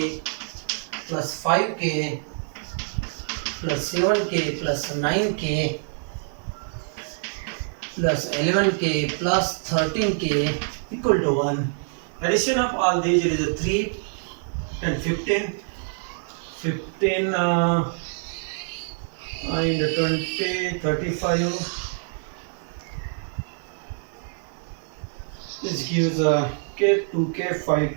plus 5k plus 7k plus 9k plus 11k plus 13k equal to 1. Addition of all these is a 3 and 15 and 20, 35. This gives k, 2k,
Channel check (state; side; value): silent; left; 61 dB below the other